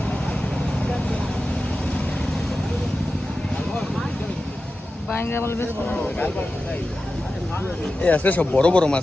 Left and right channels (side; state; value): both; normal; correlation 0.93